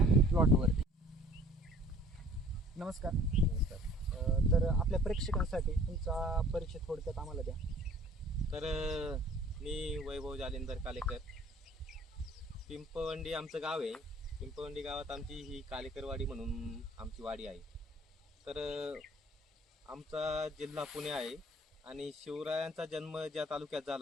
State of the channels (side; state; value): both; normal; correlation 0.52